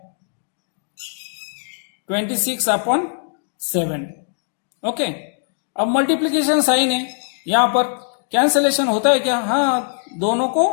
26/7. Okay, अब मल्टीप्लीकेशन साइन है, यहां पर कैंसलेशन होता है क्या? हाँ, दोनों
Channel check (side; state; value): right; silent; digital silence